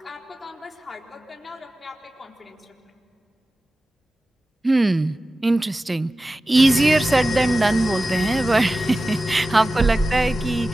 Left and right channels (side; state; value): both; normal; correlation 0.95